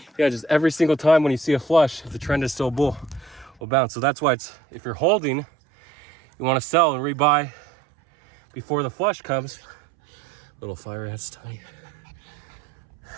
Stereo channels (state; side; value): drops out; left; at 3.6 s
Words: Yeah, just every single time when you see a flush, if the trend is still bull, will bounce. So that's why it's, if you're holding, you want to sell and rebuy before the flush comes. Little fire ants, tiny.